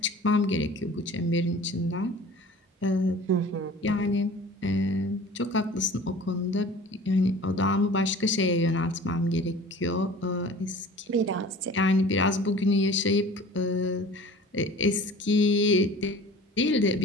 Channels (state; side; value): normal; both; correlation 0.43